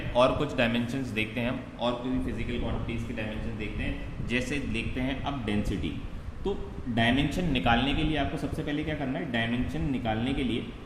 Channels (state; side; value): identical; both; correlation 1.00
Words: और कुछ डायमेंशंस देखते हैं हम, और कोई फिजिकल क्वांटिटीज़ की डायमेंशन देखते हैं। जैसे देखते हैं अब डेंसिटी। तो डायमेंशन निकालने के लिए आपको सबसे पहले क्या करना है, डायमेंशन निकालने के लिए